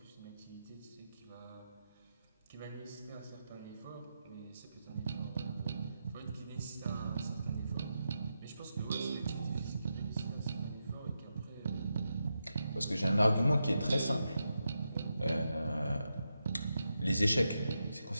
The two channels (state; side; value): inverted; both; correlation -0.86